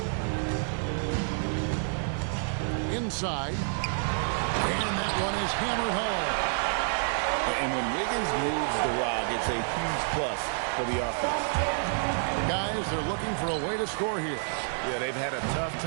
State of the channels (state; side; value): silent; left; digital silence